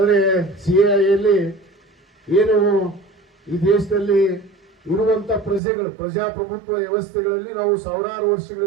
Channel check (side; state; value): left; drops out; at 5.6 s